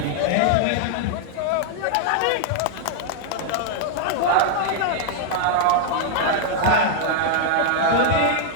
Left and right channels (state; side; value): different; both; correlation -0.01